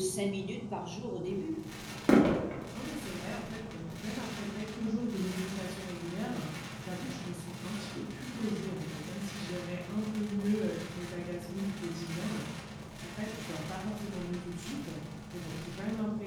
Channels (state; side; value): identical; both; correlation 1.00